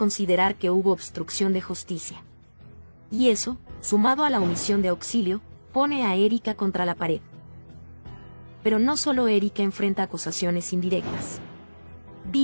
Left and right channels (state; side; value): inverted; both; correlation -1.00